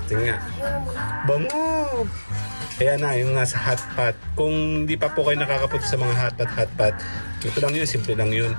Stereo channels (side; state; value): both; inverted; correlation -1.00